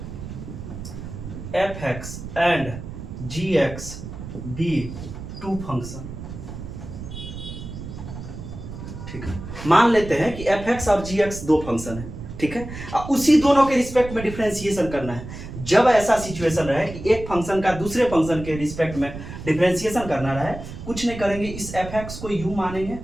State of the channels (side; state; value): right; noise; rumble, 10 dB below the sound